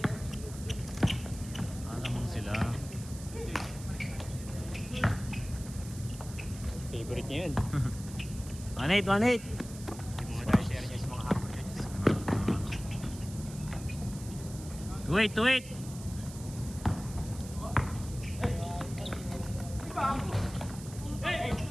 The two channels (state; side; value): noise; right; hiss, 15 dB below the sound